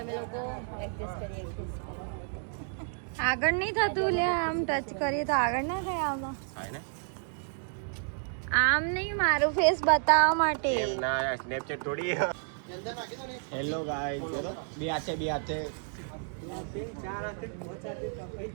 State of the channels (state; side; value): silent; left; 57 dB below the other